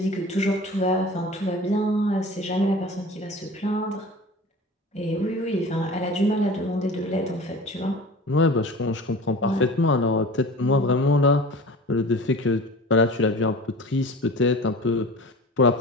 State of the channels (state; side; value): normal; both; correlation 0.38